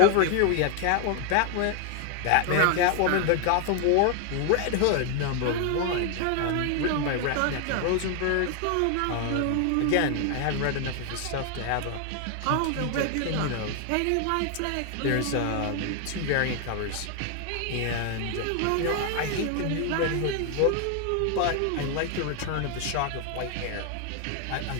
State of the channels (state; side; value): different; both; correlation 0.00